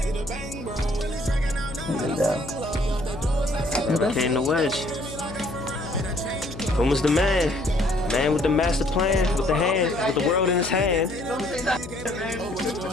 Like that. Okay, in the wedge. Puma's the man. Man with the master plan, with the hand, with the world in his hand.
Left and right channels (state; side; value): noise; left; hum, 12 dB below the sound